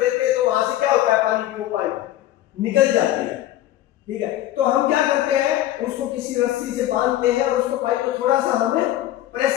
हैं तो वहां से क्या होता है? पानी की वो पाइप निकल जाती है, ठीक है। तो हम क्या करते हैं? उसको किसी रस्सी से बांधते हैं और उसको पाइप को थोड़ा सा हमें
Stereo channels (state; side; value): quieter; right; 13.8 dB